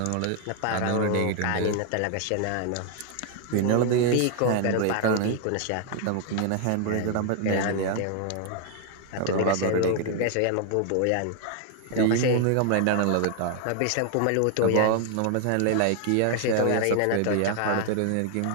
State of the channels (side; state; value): both; different; correlation 0.00